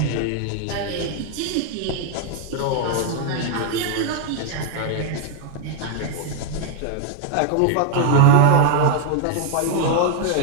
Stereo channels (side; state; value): both; different; correlation 0.00